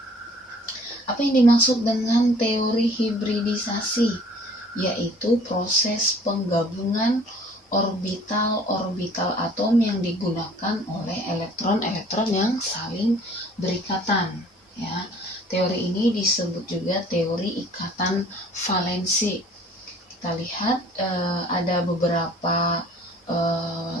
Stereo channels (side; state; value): both; normal; correlation 0.52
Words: Apa yang dimaksud dengan teori hibridisasi? Yaitu proses penggabungan orbital-orbital atom yang digunakan oleh elektron-elektron yang saling berikatan. Ya, teori ini disebut juga teori ikatan valensi. Kita lihat ada beberapa